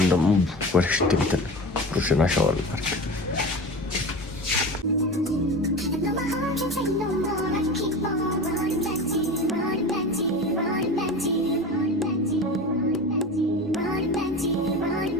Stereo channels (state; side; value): normal; both; correlation 0.30